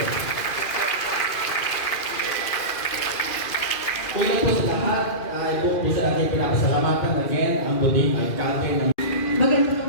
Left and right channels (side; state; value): right; late; 2.4 ms